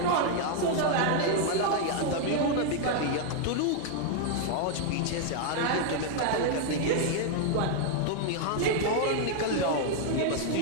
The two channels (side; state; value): both; different; correlation 0.00